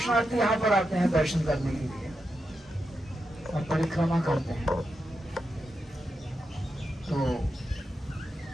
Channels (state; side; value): normal; both; correlation 0.87